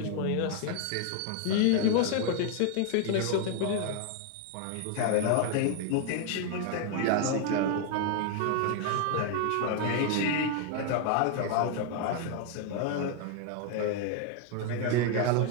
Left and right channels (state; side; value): different; both; correlation 0.00